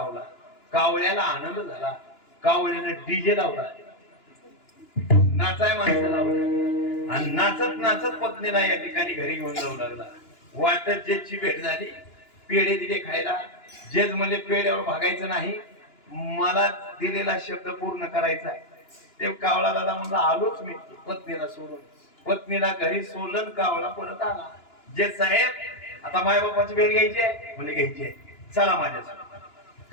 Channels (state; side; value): late; right; 2.9 ms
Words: कावळ्याला आनंद झाला. कावळ्यानं डीजे लावला, नाचाय माणसं लावलं आणि नाचत पत्नीला या ठिकाणी घरी घेऊन जाऊ लागला. वाटत जजची भेट झाली, पेढे दिले खायला. जज म्हणले पेढ्यावर भागायचं नाही, मला दिलेला शब्द पूर्ण करायचा आहे. ते कावळा दादा म्हणला आलोच मी पत्नीला सोडून. पत्नीला घरी सोडलं, कावळा परत आला. जज साहेब आता मायबापाची भेट घ्यायची आहे? म्हणजे घ्यायची आहे, चला माझ्यासोबत.